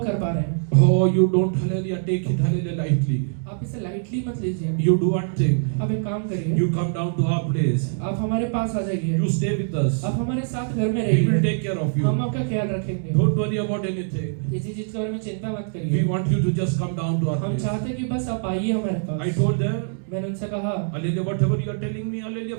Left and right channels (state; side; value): silent; left; digital silence